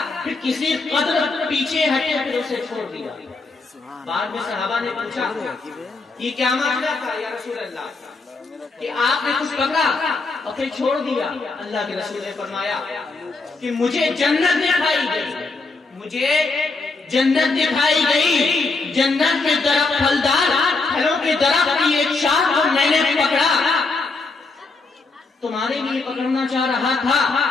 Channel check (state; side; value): quieter; right; 3.8 dB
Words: پھر کسی قدر پیچھے ہٹے پھر اسے چھوڑ دیا۔ بعد میں صحابہ نے پوچھا یہ کیا معاملہ تھا یا رسول اللہ کہ آپ نے کچھ پکڑا اور پھر چھوڑ دیا؟ اللہ کے رسول نے فرمایا کہ مجھے جنت دکھائی گئی، مجھے جنت دکھائی گئی، جنت کے درخت پھلدار پھلوں کے درخت کی ایک شاخ کو میں نے پکڑا، تمہارے لیے پکڑنا چاہ رہا تھا،